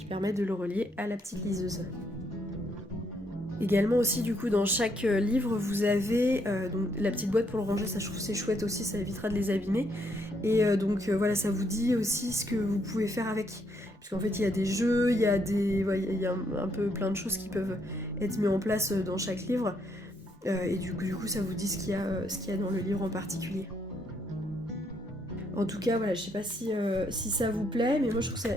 permet de le relier à la petite liseuse. Également aussi du coup dans chaque livre vous avez donc, la petite boîte pour le ranger, ça je trouve c'est chouette aussi, ça évitera de les abîmer. Et voilà, ça vous dit aussi ce que vous pouvez faire avec. Puisqu'en fait il y a des jeux, il y a un peu plein de choses qui peuvent être mises en place dans chaque livre. Et du coup ça vous dit ce qu'il y a dans le livre en particulier. En tout cas, voilà, je sais pas si ça vous plaît, mais moi je trouve que ça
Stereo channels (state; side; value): normal; both; correlation 0.73